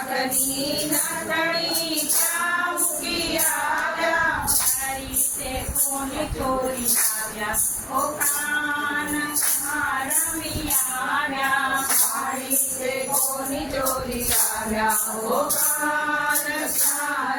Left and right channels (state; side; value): identical; both; correlation 1.00